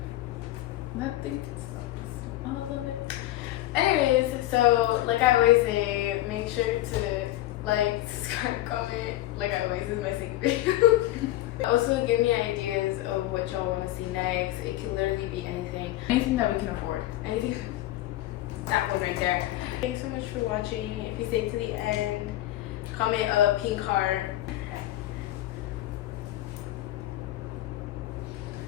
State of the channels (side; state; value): right; quieter; 15.4 dB